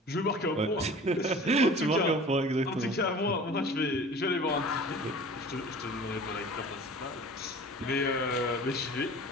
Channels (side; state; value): both; normal; correlation 0.42